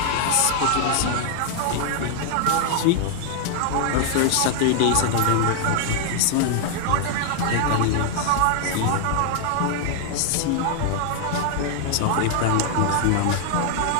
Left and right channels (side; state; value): both; different; correlation 0.00